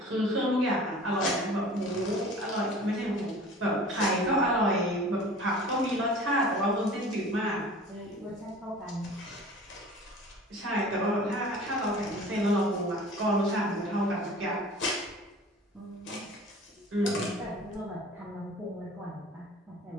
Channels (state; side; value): normal; both; correlation 0.43